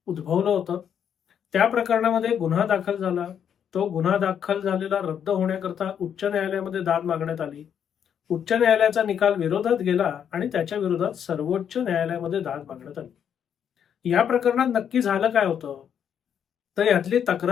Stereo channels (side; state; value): right; quieter; 8.5 dB